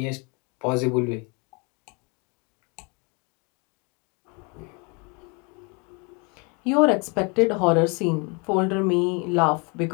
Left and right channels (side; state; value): right; quieter; 32.1 dB